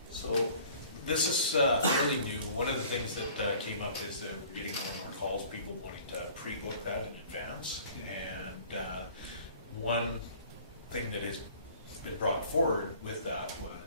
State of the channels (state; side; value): inverted; both; correlation -0.51